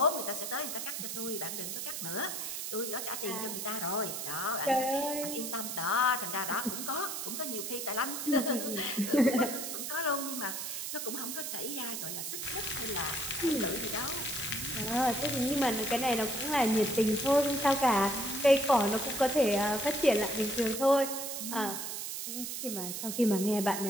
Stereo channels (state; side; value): noise; right; hiss, 5 dB below the sound